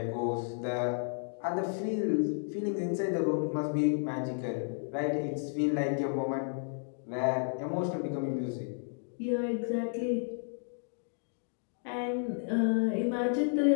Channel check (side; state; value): right; silent; digital silence